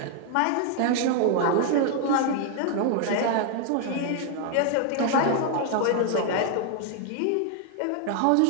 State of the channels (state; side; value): different; both; correlation 0.00